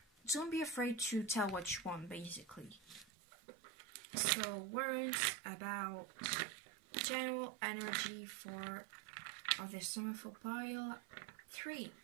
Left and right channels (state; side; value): drops out; left; at 3.1 s